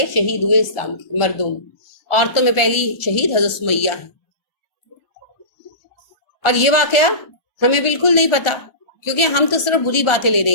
شہید ہوئے اسلام کے مردوں میں. عورتوں میں پہلی شہید حضرت سمیہ ہے. اور یہ واقعہ ہمیں بالکل نہیں پتا کیونکہ ہم تو صرف بری باتیں لینے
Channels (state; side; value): late; right; 1.4 ms